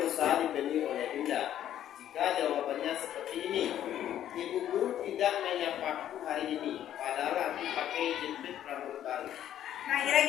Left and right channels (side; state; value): right; quieter; 11.2 dB